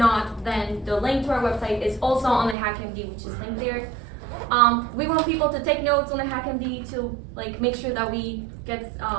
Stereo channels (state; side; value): drops out; left; at 2.6 s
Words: then the link to our website is also on the HackMD, which is linked there. We want people to take notes on the HackMD to make sure that we get